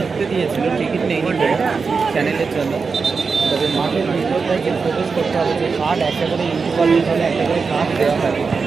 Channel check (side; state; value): left; quieter; 5.0 dB